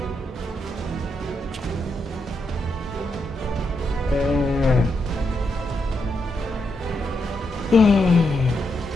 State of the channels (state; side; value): normal; both; correlation 0.82